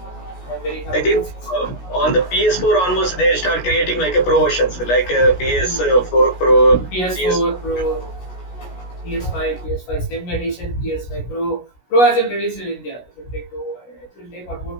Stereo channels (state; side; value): late; right; 16 ms